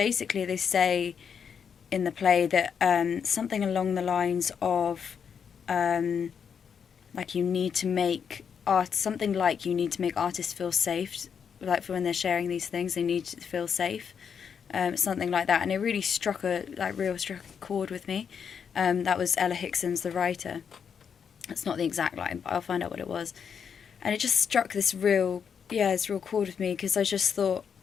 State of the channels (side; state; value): right; quieter; 7.1 dB